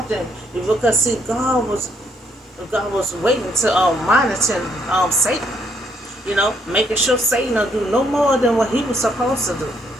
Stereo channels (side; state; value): both; normal; correlation 0.71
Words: because see, God was waiting to monitor Satan. Making sure Satan will do no more than what he was supposed to do.